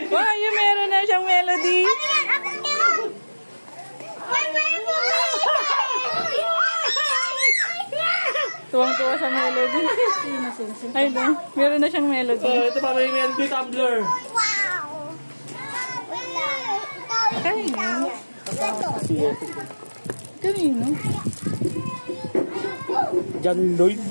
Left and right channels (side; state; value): both; inverted; correlation -1.00